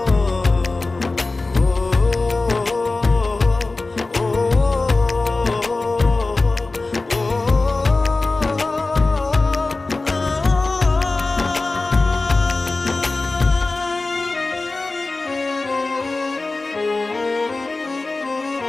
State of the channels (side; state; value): right; quieter; 3.4 dB